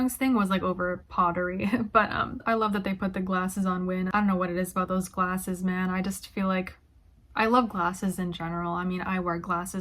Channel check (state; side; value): identical; both; correlation 1.00